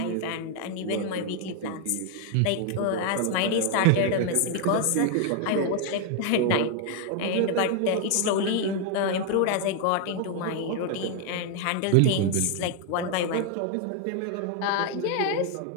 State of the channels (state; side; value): different; both; correlation 0.00